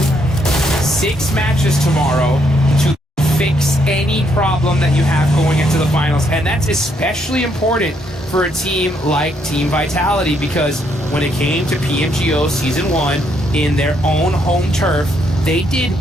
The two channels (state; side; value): normal; both; correlation 0.73